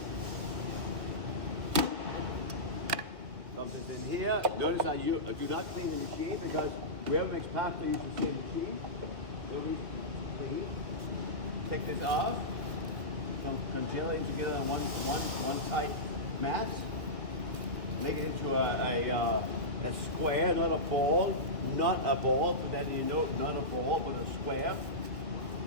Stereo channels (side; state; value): left; late; 2.0 ms